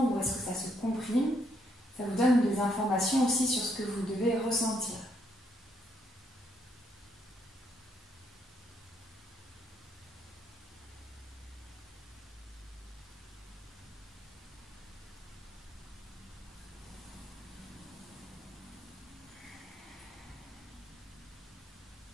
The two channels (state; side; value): normal; both; correlation 0.73